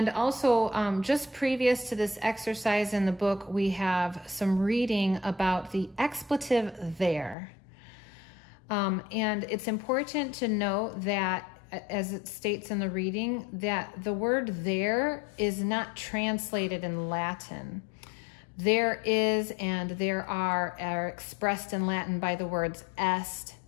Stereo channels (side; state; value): right; drops out; at 7.4 s